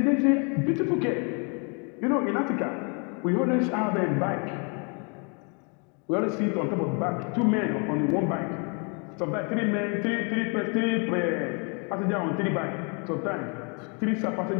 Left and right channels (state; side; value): quieter; right; 35.4 dB